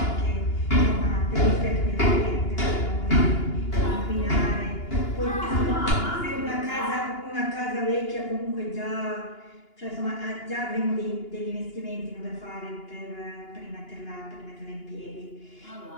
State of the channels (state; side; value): late; right; 2.9 ms